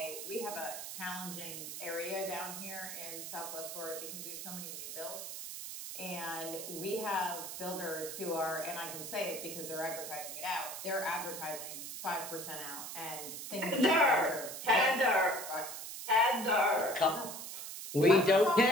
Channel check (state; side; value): noise; right; hiss, 8 dB below the sound